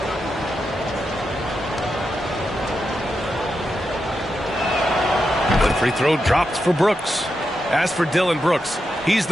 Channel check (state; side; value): normal; both; correlation 0.86